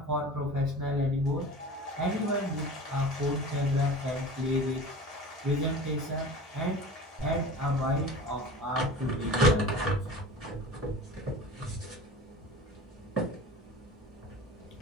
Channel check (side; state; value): both; normal; correlation 0.37